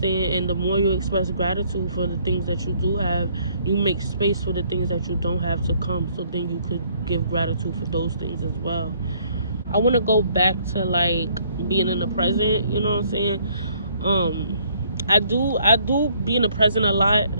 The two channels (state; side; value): inverted; both; correlation -0.64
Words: saying? And the more you express gratitude for the things that you do have, you make space for the things that you don't have to come, so then you could give gratitude for those things as well. I want to go back to like being in the present. You know what I'm saying? I do be in the present a lot.